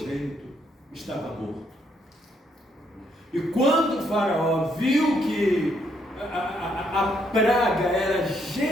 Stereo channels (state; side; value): normal; both; correlation 0.73